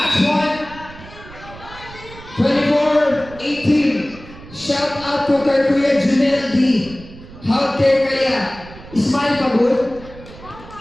point. 24-18. Shout out to kay Kuya Junel D. How care kaya? Smile pa good?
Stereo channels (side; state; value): right; noise; rumble, 18 dB below the sound